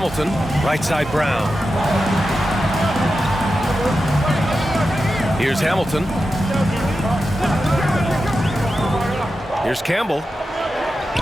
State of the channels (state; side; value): normal; both; correlation 0.91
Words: Right side Brown. Here's Hamilton. Here's Campbell.